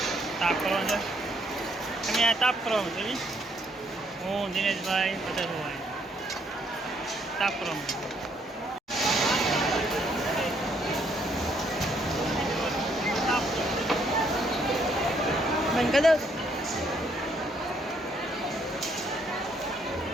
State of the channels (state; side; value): normal; both; correlation 0.70